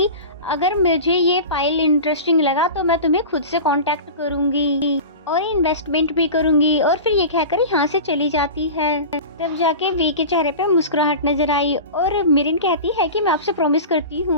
अगर मुझे ये फाइल इंटरेस्टिंग लगा तो मैं तुम्हें खुद से कांटेक्ट करूंगी और इन्वेस्टमेंट भी करूंगी। और फिर ये कहकर यहाँ से चली जाती है। तब जाके वी के चेहरे पे मुस्कुराहट नजर आई और मिरिन कहती है कि मैं आपसे प्रॉमिस करती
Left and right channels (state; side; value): inverted; both; correlation -0.31